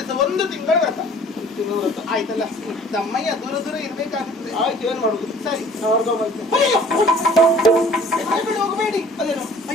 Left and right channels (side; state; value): both; normal; correlation 0.51